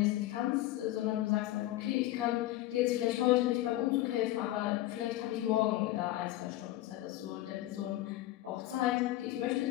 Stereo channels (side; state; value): right; quieter; 15.6 dB